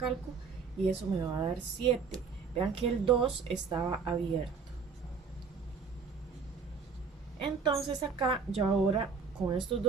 y eso me va a dar 7. Vean que el 2 estaba abierto. Entonces acá yo ahora con estos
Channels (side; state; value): left; quieter; 5.4 dB